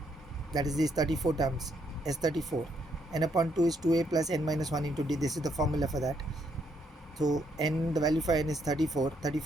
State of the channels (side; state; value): both; normal; correlation 0.73